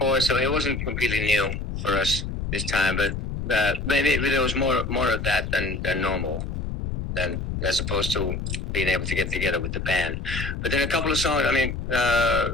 so it wasn't completely new for us this time. But maybe there was more of that than normal, than as opposed to being able to get together with the band. But then a couple of songs. I mean,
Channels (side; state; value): left; noise; rumble, 4 dB below the sound